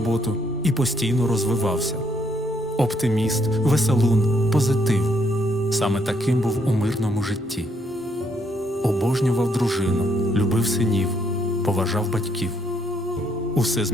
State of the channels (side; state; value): both; normal; correlation 0.72